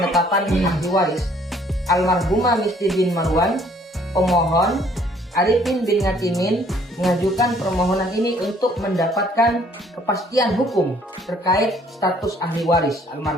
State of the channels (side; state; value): both; normal; correlation 0.61